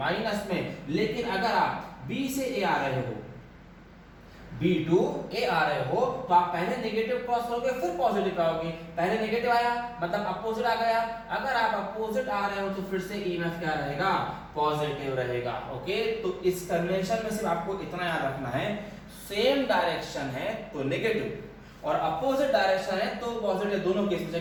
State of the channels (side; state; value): both; identical; correlation 1.00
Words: में। लेकिन अगर आप B से A आ रहे हो, B टू A आ रहे हो, तो आप पहले नेगेटिव क्रॉस करोगे फिर पॉजिटिव आओगे। पहले नेगेटिव आया मतलब अपोजिट आ गया, अगर आप अपोजिट आ रहे हो तो फिर से ईएमएफ क्या रहेगा, पॉजिटिव रहेगा। ओके, तो इस कन्वेंशन में सिर्फ आपको इतना याद रखना है, सेम डायरेक्शन है तो नेगेटिव और अपोजिट डायरेक्शन है तो पॉजिटिव। दोनों केस में